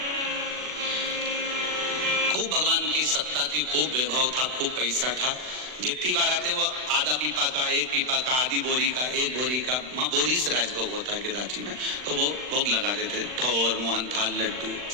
खूब भगवान की सत्ता थी, खूब वैभव था, खूब पैसा था। जितनी बार आते वो आधा पीपा का, एक पीपा का, आधी बोरी का, एक बोरी का, वहां बोरी से राजभोग होता है गिराची में, तो वो भोग लगा देते, ठोर, मोहन थाल, लड्डू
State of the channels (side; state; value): left; late; 39 ms